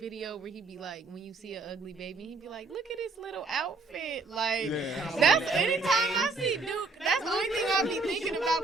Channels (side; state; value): left; quieter; 3.6 dB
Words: where he be like, when you see an ugly baby, he be like, look at his little outfit. Like, Yeah. that's, anytime I see Duke, that's the only thing I be thinking about